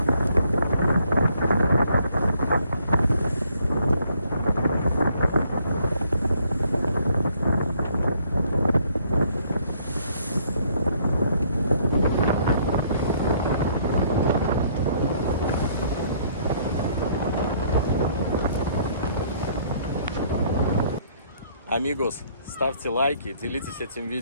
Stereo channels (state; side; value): inverted; both; correlation -0.65